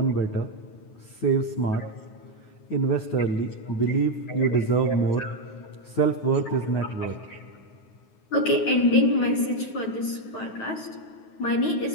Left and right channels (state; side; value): late; right; 9.5 ms